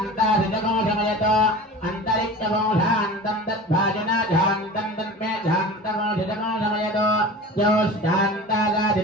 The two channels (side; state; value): both; normal; correlation 0.36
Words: सिद्धमोषमयतो अंतरिक्षमो शांतं तद्भाजना शांतं तन्मे शांतमो सिद्धमोषमयतो यो शांता